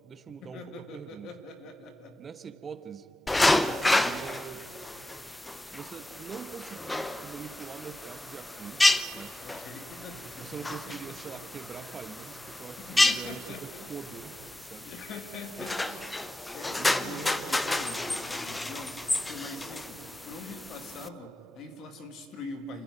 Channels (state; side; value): normal; both; correlation 0.92